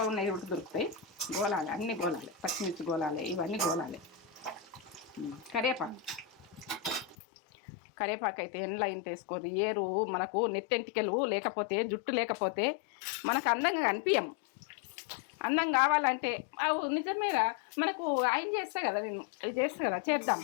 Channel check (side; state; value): right; drops out; at 7.2 s